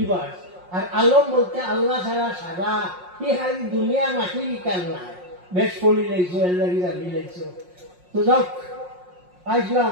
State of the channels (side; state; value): left; late; 5.6 ms